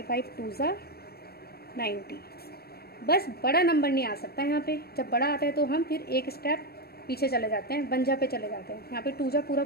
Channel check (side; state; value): right; late; 0.46 ms